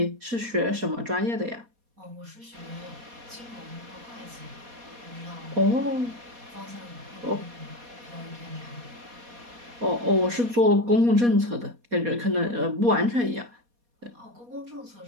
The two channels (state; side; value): late; left; 4.2 ms